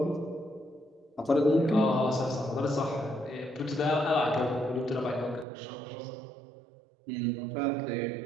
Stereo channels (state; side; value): drops out; left; at 5.5 s